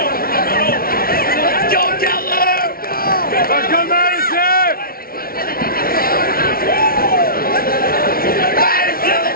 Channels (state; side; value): late; right; 0.43 ms